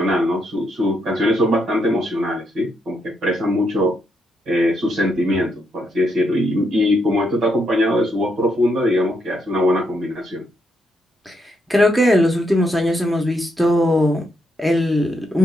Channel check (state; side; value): normal; both; correlation 0.78